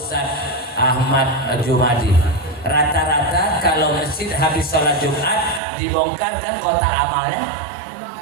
Ahmad Jumadi. Rata-rata kalau masjid habis sholat Jumat dibongkar kan kotak amalnya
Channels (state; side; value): drops out; left; at 5.6 s